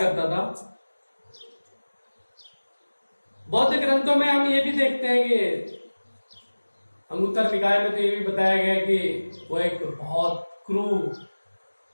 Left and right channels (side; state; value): both; inverted; correlation -1.00